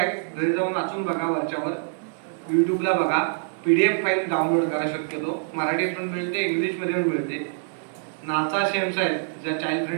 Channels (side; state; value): left; silent; 59 dB below the other